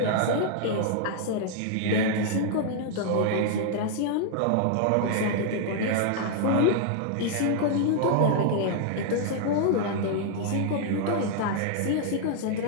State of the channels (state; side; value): different; both; correlation 0.00